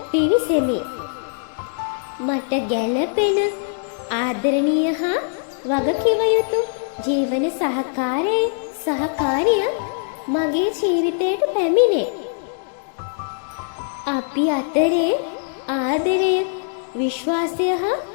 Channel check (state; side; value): silent; right; digital silence